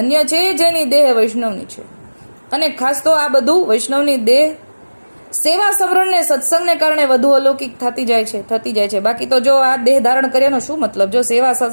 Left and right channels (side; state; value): both; inverted; correlation -1.00